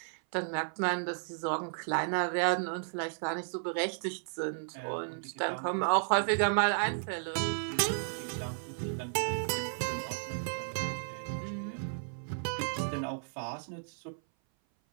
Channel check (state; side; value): silent; left; 55 dB below the other